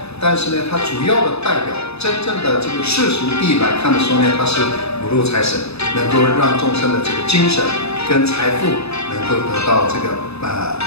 但是呢，它主要的代表真正的这个世俗地来看的时候呢，它是五路财神，能够让众生的这个精神跟财富能够得到这个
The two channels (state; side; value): late; right; 0.79 ms